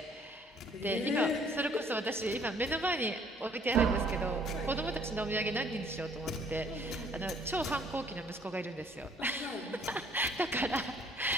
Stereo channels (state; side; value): normal; both; correlation 0.60